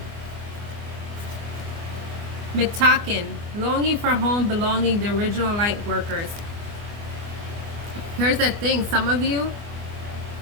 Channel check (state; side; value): late; left; 24 ms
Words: Mitaken, longing for home, belonging, the original light workers. Here's the thing, some of you,